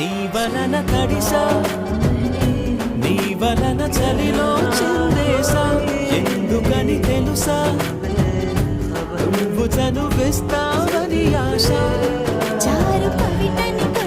వలన తడిసా నీ వలన చలిలో చిందేసా ఎందుకని తెలుసా నువ్వు చనువిస్తావని ఆశ చారు పవిటని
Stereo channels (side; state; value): both; identical; correlation 1.00